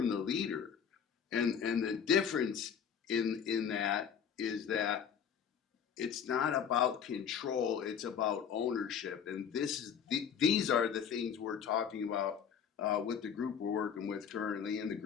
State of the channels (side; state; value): right; quieter; 7.6 dB